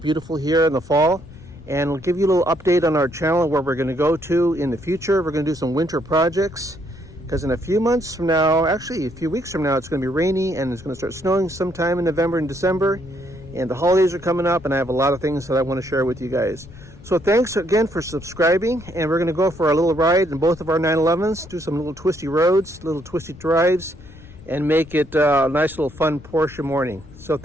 here in the fall. And we'll give you a little update on our channel where we're going to go to in the future. We're going to do some winter projects because in a few months from now, actually a few weeks from now, it's going to be rainy and it's going to start snowing sometime in November and December. And the holidays are coming up and I have a lot of things that I want to share with you guys. So thanks again for subscribing, and we're going to go for a little ride in both of our 911's, do some little twisty roads, little twisty drives, and make it a nice little fun Porsche morning. So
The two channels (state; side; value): noise; left; rumble, 19 dB below the sound